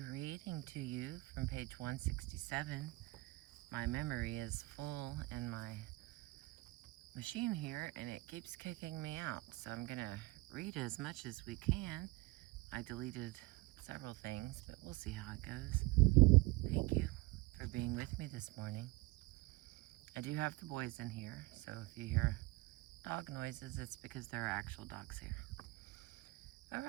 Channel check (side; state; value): left; quieter; 21.8 dB